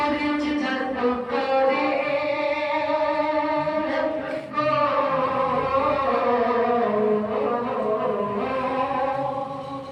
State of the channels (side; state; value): both; identical; correlation 1.00